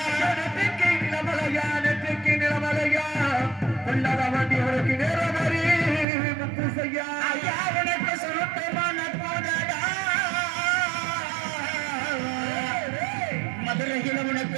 நெத்திக்கு நிலமலையா கொள்ளாத வண்டி உனக்கு நேரம் ஒரு முப்பு செய்யா ஐயா உனக்கு சுருட்டமான போதடா மதுரையில்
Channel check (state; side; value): drops out; left; at 6.1 s